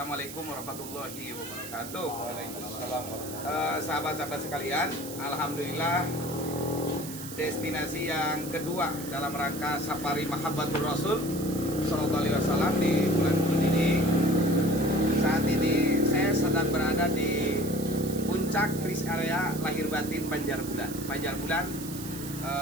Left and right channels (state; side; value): noise; right; hiss, 11 dB below the sound